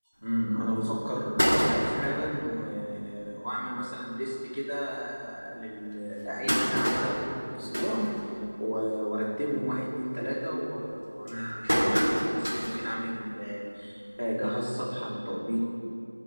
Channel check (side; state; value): both; inverted; correlation -1.00